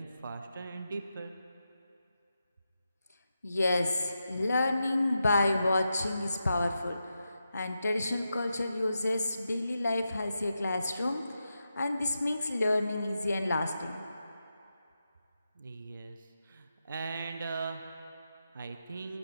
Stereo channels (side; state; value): both; inverted; correlation -0.88